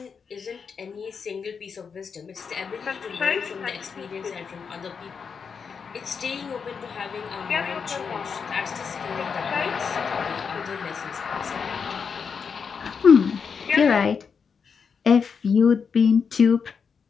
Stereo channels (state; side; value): quieter; right; 6.0 dB